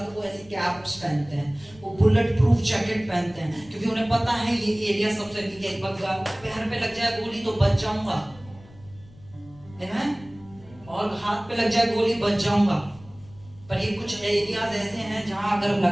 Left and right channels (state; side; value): noise; left; rumble, 23 dB below the sound